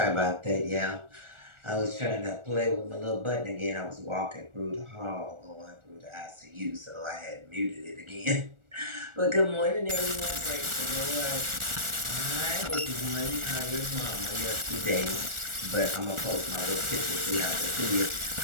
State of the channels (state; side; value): late; left; 1.4 ms